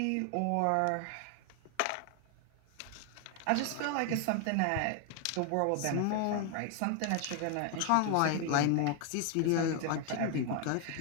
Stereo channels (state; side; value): different; both; correlation 0.00